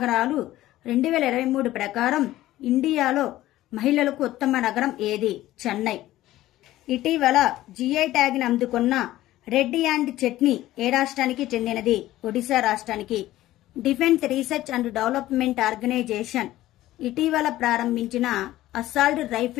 2023 ప్రకారం ఇండియాలో మహిళలకు ఉత్తమ నగరం ఏది? చెన్నై. ఇటీవల జిఐ ట్యాగ్ ని అందుకున్న రెడ్డి అండ్ చట్నీ ఏ రాష్ట్రానికి చెందినది? ఒడిశా రాష్ట్రానికి. Defence research and development organisation ఇటీవల ప్రారంభించిన అసాల్ట్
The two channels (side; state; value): right; quieter; 15.3 dB